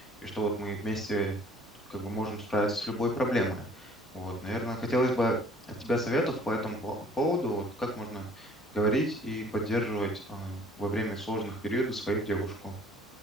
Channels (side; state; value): both; normal; correlation 0.54